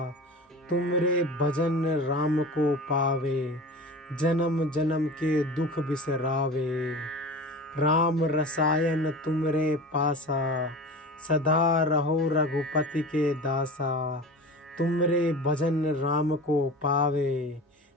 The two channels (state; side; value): normal; both; correlation 0.34